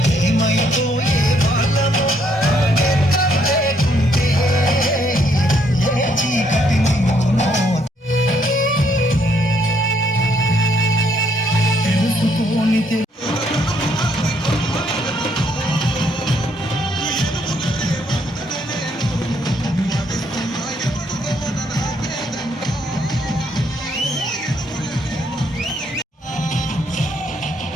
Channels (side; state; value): both; normal; correlation 0.70